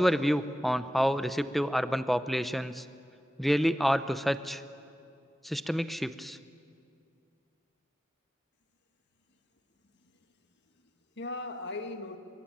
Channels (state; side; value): normal; both; correlation 0.93